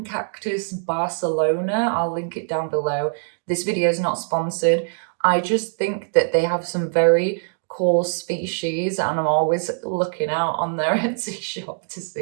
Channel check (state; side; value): silent; left; digital silence